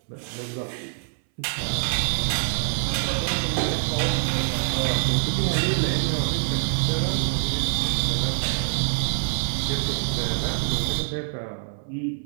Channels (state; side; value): silent; left; 62 dB below the other